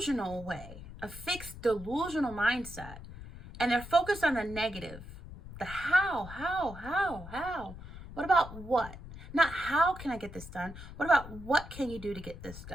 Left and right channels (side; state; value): left; noise; rumble, 13 dB below the sound